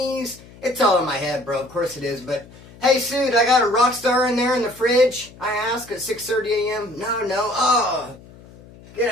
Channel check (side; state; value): left; noise; hum, 22 dB below the sound